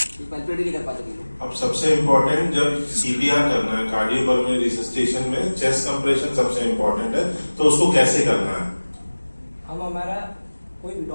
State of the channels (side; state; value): both; inverted; correlation -1.00